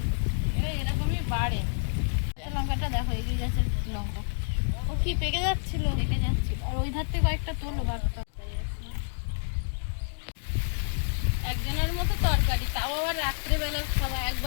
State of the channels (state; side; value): silent; right; digital silence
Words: এরকমই বাড়ে। লঙ্কাটা দেখো এগিয়ে যাচ্ছে লঙ্কা ও কি পেকে যাচ্ছিল? পেকে যাচ্ছিল আর ওই ধার থেকে কয়েকটা তোলো ভাতটা একজনের মতো তরকারি, তাও আবার রাত্রেবেলা খাওয়া,